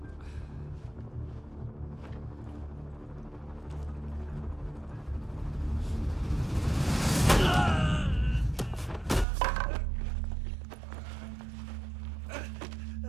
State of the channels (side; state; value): left; drops out; at 9.2 s